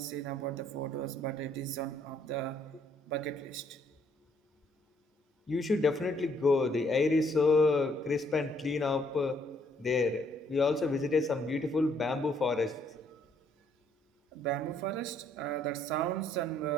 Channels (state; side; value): normal; both; correlation 0.67